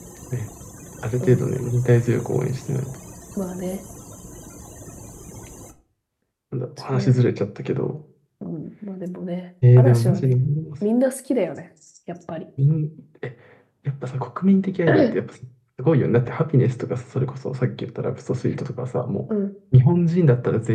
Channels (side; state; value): both; identical; correlation 1.00